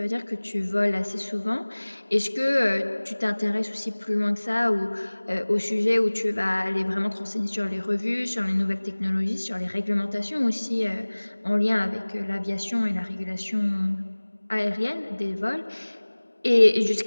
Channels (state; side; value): inverted; both; correlation -1.00